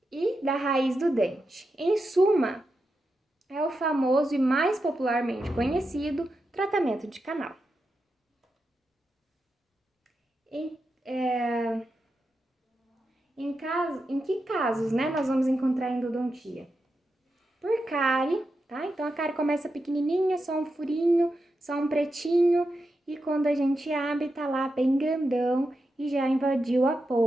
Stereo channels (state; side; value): normal; both; correlation 0.88